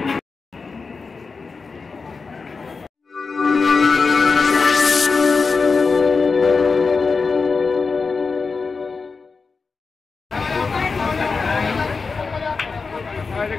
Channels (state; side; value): quieter; right; 4.6 dB